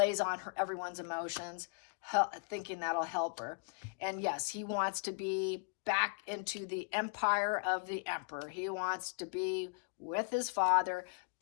on everyone's emotions, thinking that'll help her. And yes, he wants to be back into the empire of the emperor. He wants to be with his father,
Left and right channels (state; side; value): quieter; right; 37.4 dB